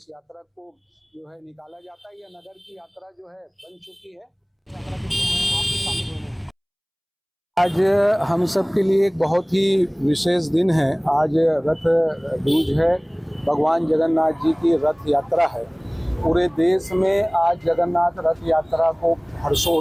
यात्रा को जो है निकाला जाता है। यह नगर की यात्रा जो है बन चुकी है। आज हम सब के लिए एक बहुत ही विशेष दिन है। आज रथ दूज है, भगवान जगन्नाथ जी की रथ यात्रा है। पूरे देश में आज जगन्नाथ रथ यात्रा को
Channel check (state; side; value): identical; both; correlation 1.00